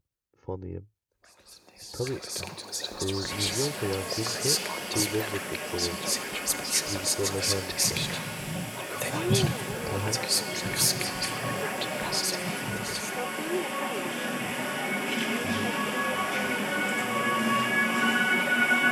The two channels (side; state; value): both; identical; correlation 1.00